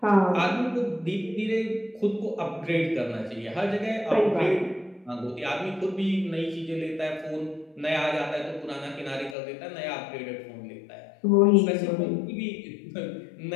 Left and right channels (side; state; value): right; drops out; at 9.3 s